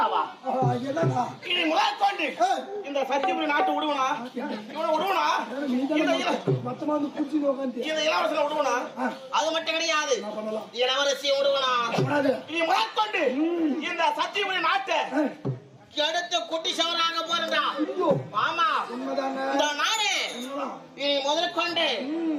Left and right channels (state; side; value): identical; both; correlation 1.00